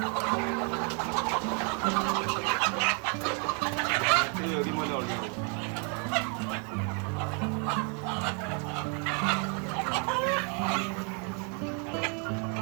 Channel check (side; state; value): left; quieter; 37.0 dB